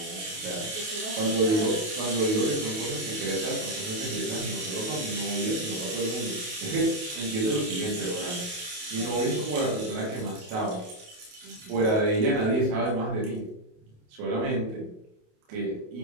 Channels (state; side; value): late; left; 28 ms